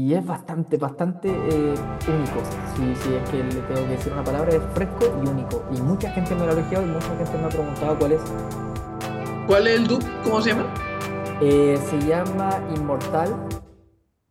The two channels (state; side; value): identical; both; correlation 1.00